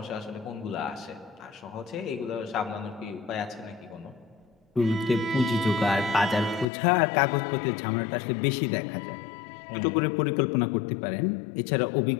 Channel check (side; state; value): right; drops out; at 6.7 s